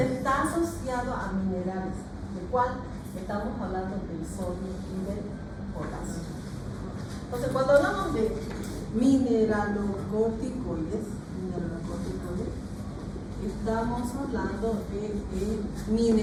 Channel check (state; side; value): identical; both; correlation 1.00